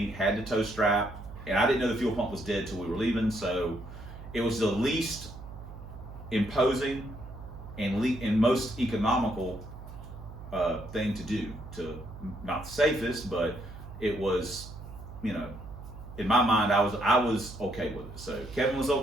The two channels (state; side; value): noise; right; hum, 13 dB below the sound